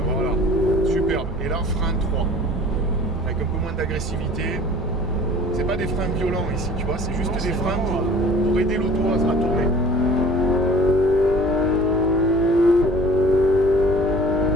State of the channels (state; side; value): normal; both; correlation 0.47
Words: voilà. Superbe. Et là, frein 3. Avec un peu moins d'agressivité. C'est pas des freins violents ici, tu vois, c'est juste des freins pour aider l'auto à se retourner.